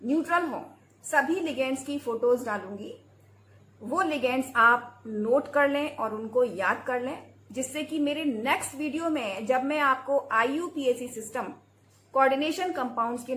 न्यूट्रल हो, सभी लिगेंड्स की फोटोज डालूंगी। वो लिगेंड्स आप नोट कर लें और उनको याद कर लें, जिससे कि मेरे नेक्स्ट वीडियो में जब मैं आपको IUPAC सिस्टम कोऑर्डिनेशन कंपाउंड्स के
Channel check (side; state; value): both; identical; correlation 1.00